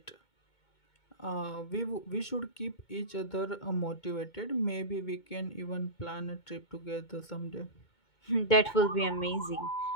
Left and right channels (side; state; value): right; late; 2.2 ms